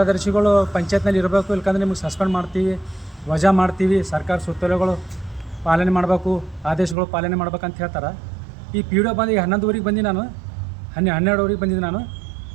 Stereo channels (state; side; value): drops out; left; at 7.0 s